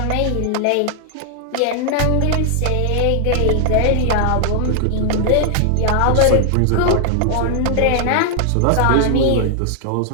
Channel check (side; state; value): both; different; correlation 0.00